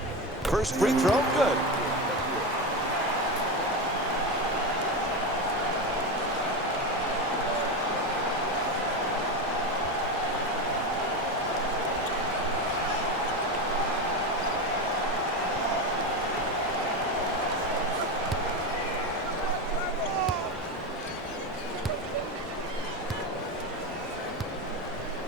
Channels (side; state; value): both; normal; correlation 0.17